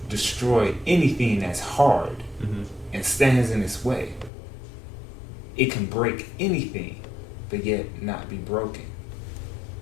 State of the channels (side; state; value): right; drops out; at 4.3 s